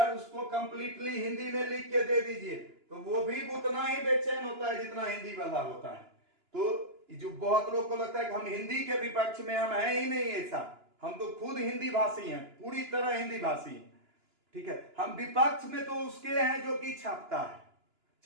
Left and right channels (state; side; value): late; left; 2.9 ms